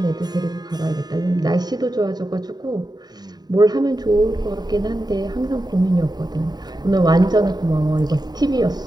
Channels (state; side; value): late; left; 0.20 ms